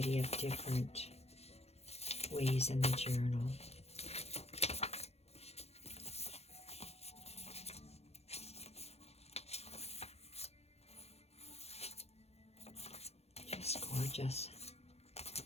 of different ways in the journal. Gorgeous.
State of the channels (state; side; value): late; right; 0.30 ms